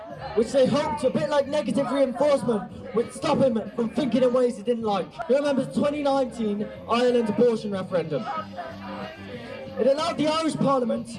which they hoped, a bit like negative reinforcement, would stop him from thinking in ways he didn't like. He remembers the 2019 Ireland abortion referendum. It allowed the Irish Parliament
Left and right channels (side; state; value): both; identical; correlation 1.00